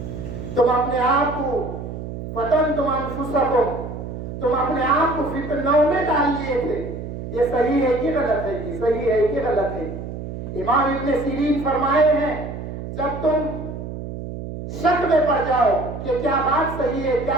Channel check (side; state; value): right; noise; hum, 8 dB below the sound